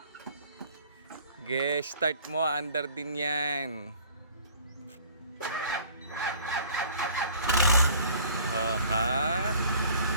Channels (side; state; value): both; inverted; correlation -0.52